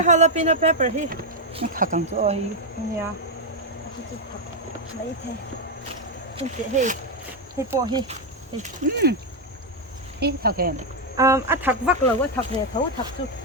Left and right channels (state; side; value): normal; both; correlation 0.02